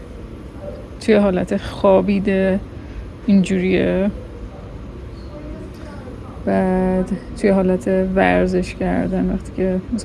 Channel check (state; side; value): identical; both; correlation 1.00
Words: توی حالت خوابیده اینجوریه، بعد توی حالت ورزش کردن وقتی که